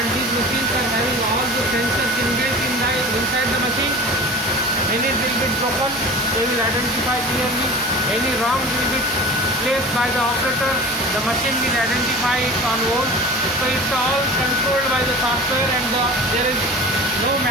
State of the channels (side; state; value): both; normal; correlation 0.37